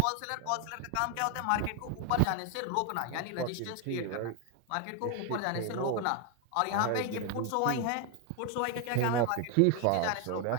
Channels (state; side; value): different; both; correlation 0.01